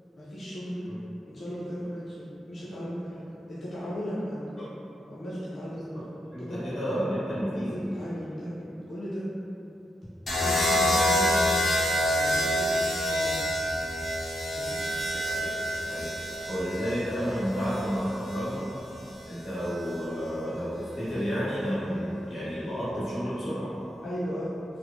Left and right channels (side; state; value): both; normal; correlation 0.82